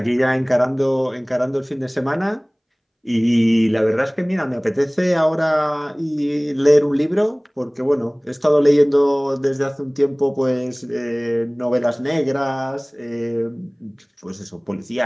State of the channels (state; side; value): identical; both; correlation 1.00